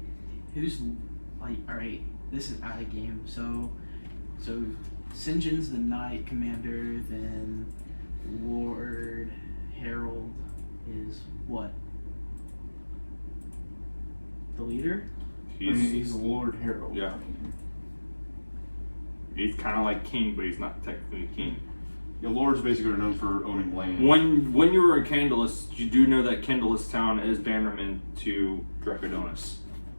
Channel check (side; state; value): both; inverted; correlation -1.00